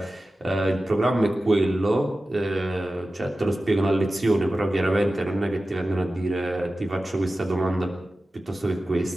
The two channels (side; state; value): both; normal; correlation 0.94